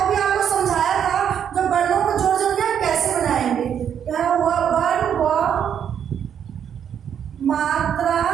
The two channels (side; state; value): left; quieter; 8.6 dB